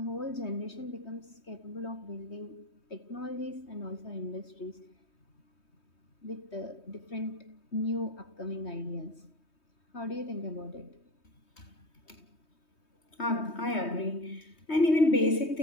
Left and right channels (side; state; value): right; late; 3.2 ms